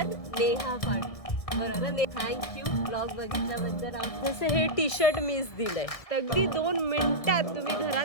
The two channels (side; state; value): right; late; 1.6 ms